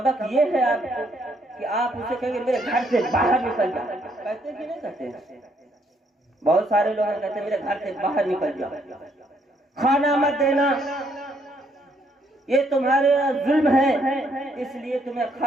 ये है आपको कि आप उसे कहेंगे मेरे घर से बाहर निकल जा। कहते कि नहीं कहते? बहुत सारे लोग कहते मेरे घर से बाहर निकल जा, खाना मत देना, ये तुम्हारे जुल्म है, इसलिए तुम्हें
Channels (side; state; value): both; normal; correlation 0.71